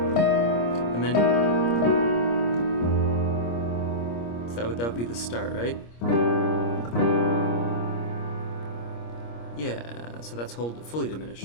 And then so that would be the start, right? Yeah, so that's fully diminished.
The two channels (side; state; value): right; late; 25 ms